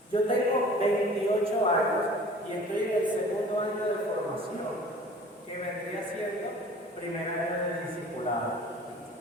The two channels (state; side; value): normal; both; correlation 0.46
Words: Yo tengo 28 años y estoy en el segundo año de formación, que vendría siendo primer año de discipulado.